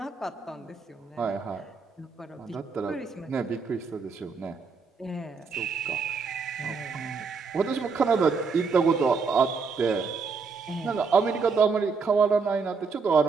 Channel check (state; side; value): quieter; left; 5.0 dB